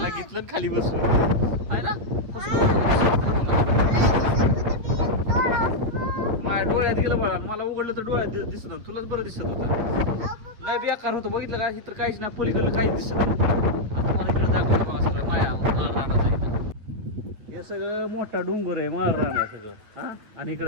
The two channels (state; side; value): late; left; 9.1 ms